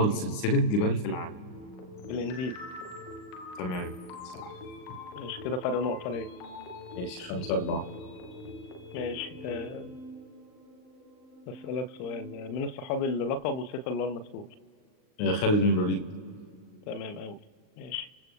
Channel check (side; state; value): right; late; 39 ms